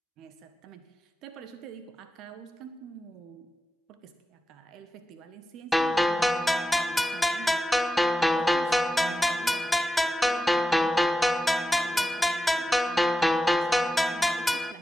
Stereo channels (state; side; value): normal; both; correlation 0.93